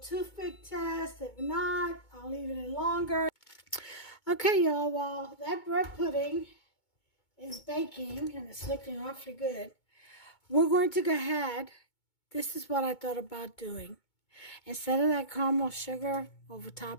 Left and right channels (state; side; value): late; right; 2.2 ms